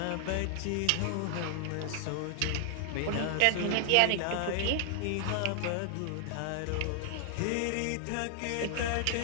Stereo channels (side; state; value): both; different; correlation 0.00